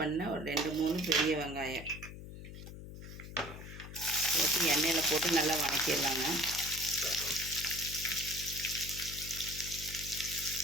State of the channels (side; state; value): left; noise; hum, 12 dB below the sound